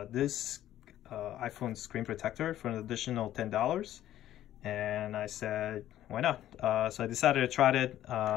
this iPhone screen protector for an additional $10. And I said, why not? So I decided to try it.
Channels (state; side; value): quieter; right; 12.7 dB